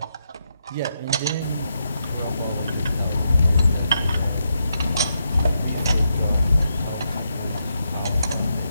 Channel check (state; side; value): inverted; both; correlation -0.82